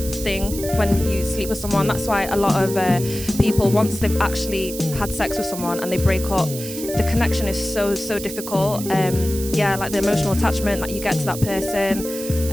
thing when you sleep with someone. That's why a lot of people, once they've actually had sex with someone and they break up, the connection is so difficult. Yeah, like the emotional attachment that you get to that person,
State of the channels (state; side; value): noise; right; hiss, 10 dB below the sound